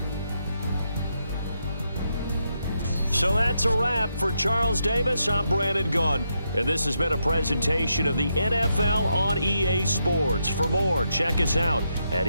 So that's a wrap. For Charles Davis, I'm Brandon Gaudin. And this has been a presentation of the NFL on EA Sports. For more, check us out at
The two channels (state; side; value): inverted; both; correlation -0.82